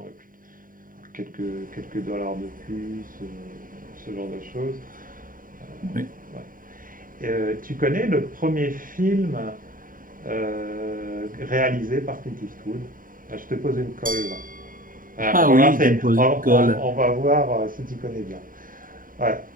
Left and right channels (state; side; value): late; left; 0.40 ms